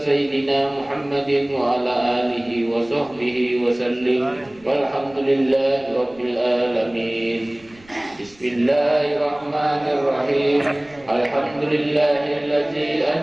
سيدنا محمد وعلى آله وصحبه وسلم والحمد لله رب العالمين. بسم الله الرحمن الرحيم. الحمد لله الذي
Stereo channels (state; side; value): noise; right; rumble, 28 dB below the sound